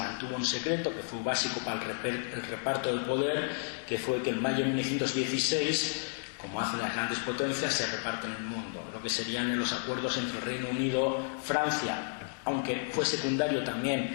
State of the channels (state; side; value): silent; right; digital silence